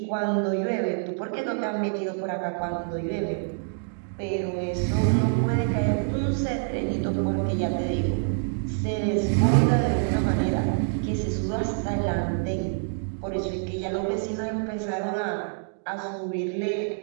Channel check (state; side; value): silent; left; digital silence